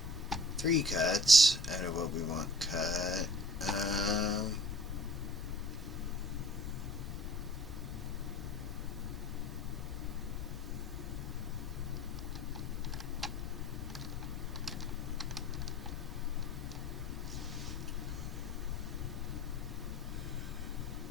3 cuts out of what we want cut.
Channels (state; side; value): normal; both; correlation 0.47